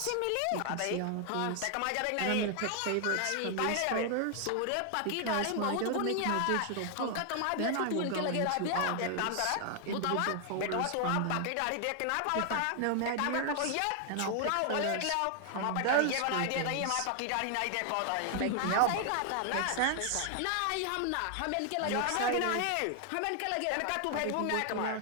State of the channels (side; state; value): both; different; correlation 0.00